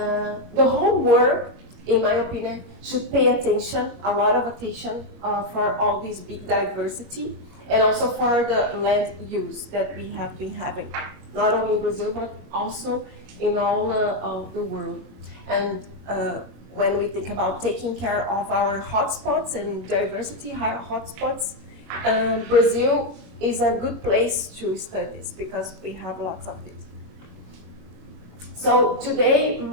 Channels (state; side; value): late; left; 21 ms